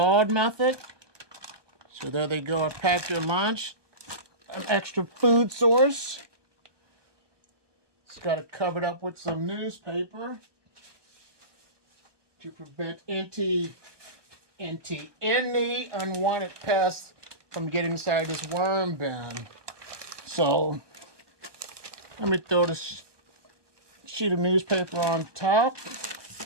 method. So there they go. I packed your lunch. An extra food source. It's got it covered up with some newspaper to prevent any unwanted pests from getting inside this worm bin. So let me throw this sheet of newspaper on top.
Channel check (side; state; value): left; late; 1.2 ms